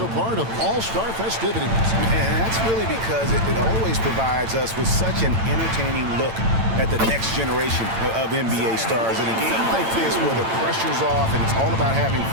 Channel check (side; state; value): left; late; 8.9 ms